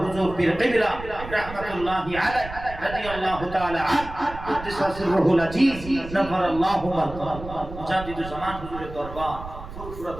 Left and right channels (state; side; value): noise; right; rumble, 12 dB below the sound